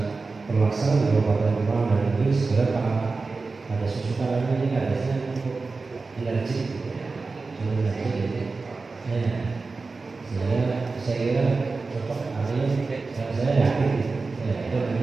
Kalsel di Kabupaten Kemang dan itu sebenarnya ada susukan ini kadesnya cukup energi, cukup energi gitu. Saya kira cocok hari dan saya yakin ya itu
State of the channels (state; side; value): quieter; left; 4.0 dB